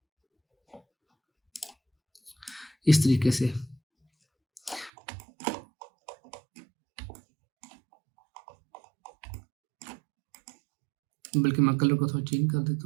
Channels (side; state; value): left; drops out; at 4.9 s